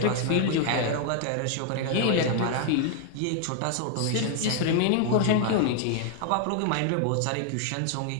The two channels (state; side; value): different; both; correlation 0.00